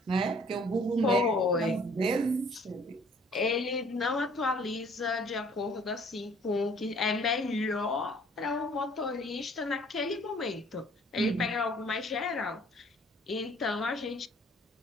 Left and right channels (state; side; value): normal; both; correlation 0.56